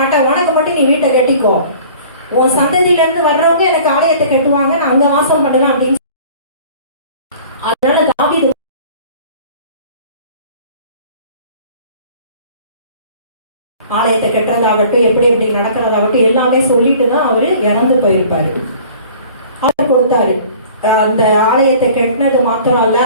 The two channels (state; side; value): inverted; both; correlation -0.48